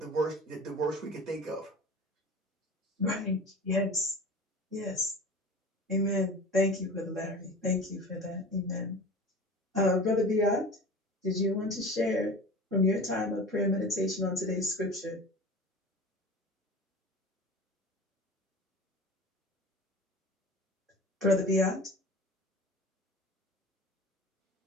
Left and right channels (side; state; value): both; normal; correlation 0.36